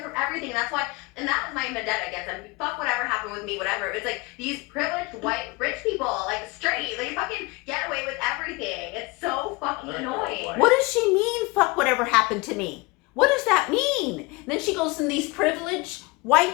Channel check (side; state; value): right; quieter; 24.7 dB